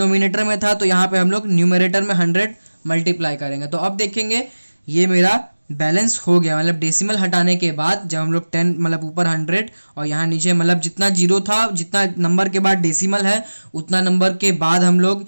में था, तो यहाँ पे हम लोग न्यूमरेटर में 100 मल्टीप्लाई करेंगे। तो अब देखेंगे ये मेरा बैलेंस हो गया, मतलब डेसिमल हटाने के बाद जब हम लोग 10, मतलब ऊपर 100 और यहाँ नीचे, मतलब जितना 0 था, जितना नंबर के बाद डेसिमल है उतना नंबर के बाद हम लोग,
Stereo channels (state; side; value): inverted; both; correlation -1.00